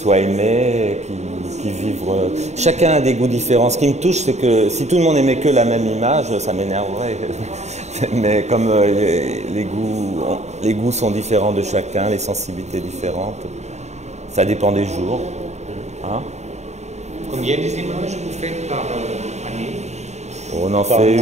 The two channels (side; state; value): left; late; 0.33 ms